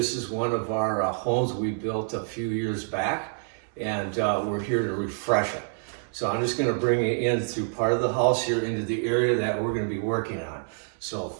is one of our homes we built a few years back, and we're here to refresh it. So I'm just going to bring you in through part of the house here into the area that we're going to be working on. So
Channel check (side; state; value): left; silent; digital silence